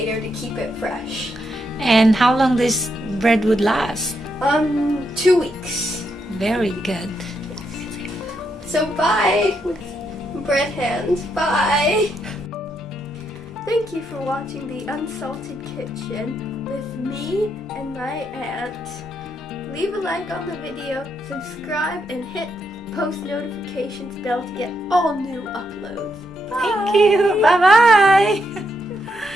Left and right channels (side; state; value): both; normal; correlation 0.79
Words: to keep it fresh. And how long this bread would last? 2 weeks. Very good. So bye with bread hands. Bye. Thank you for watching the Unsalted Kitchen with me and my aunt. Leave a like on the video, subscribe, and hit post notifications bell to get all new uploads. Bye. Thank you. Bye-bye.